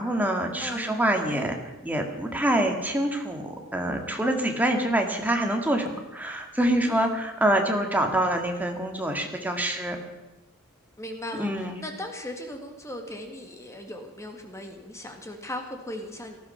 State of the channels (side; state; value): both; normal; correlation 0.64